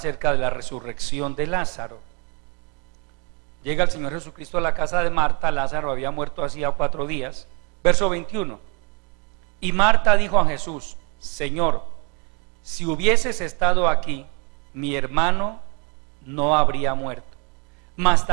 de la resurrección de Lázaro. Llega el Señor Jesucristo a la casa de Marta. Lázaro había muerto hacía 4 días. Verso 21. Y Marta dijo a Jesús: Señor, si hubieses estado aquí, mi hermano no habría muerto. Mas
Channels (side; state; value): left; quieter; 33.6 dB